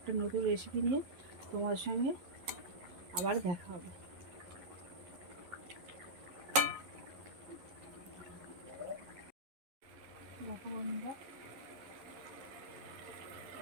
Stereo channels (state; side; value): late; left; 11 ms